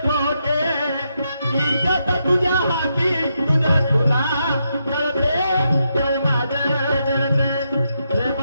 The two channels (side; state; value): both; inverted; correlation -0.82